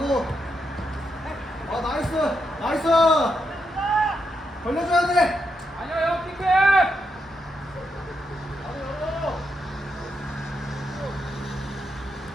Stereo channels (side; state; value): both; normal; correlation 0.82